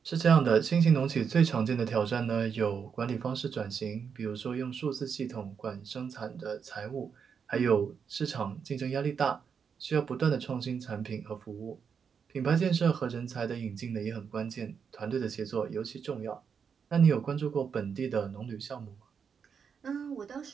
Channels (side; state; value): left; quieter; 6.6 dB